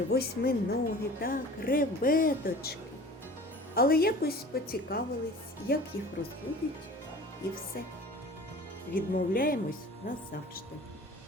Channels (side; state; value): both; normal; correlation 0.43